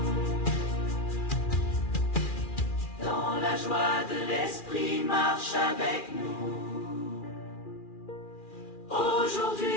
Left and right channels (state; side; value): late; right; 2.4 ms